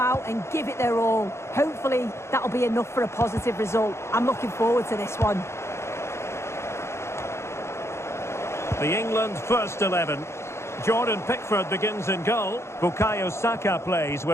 and give it their all. Hopefully, that'll be enough for a positive result. I'm looking forward to this one. The England first 11. Jordan Pickford begins in goal. Bukayo Saka plays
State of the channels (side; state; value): right; late; 0.13 ms